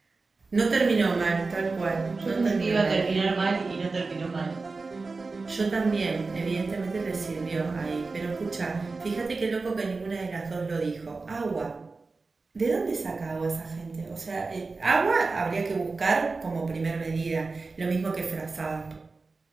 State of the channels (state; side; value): quieter; left; 3.9 dB